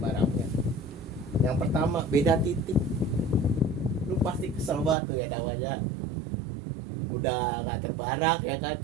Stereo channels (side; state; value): left; drops out; at 5.0 s